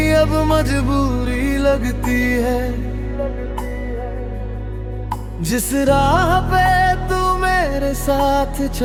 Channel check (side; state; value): both; identical; correlation 1.00